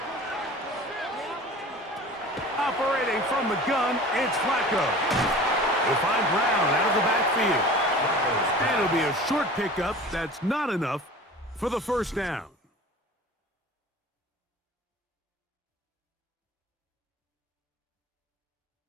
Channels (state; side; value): normal; both; correlation 0.40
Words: Operating from the gun, it's Flacco. He'll find Brown out of the backfield. And it'll be a short pickup that's not enough for the first down.